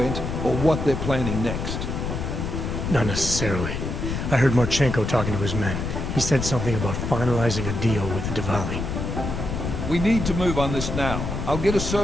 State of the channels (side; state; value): left; noise; rumble, 3 dB below the sound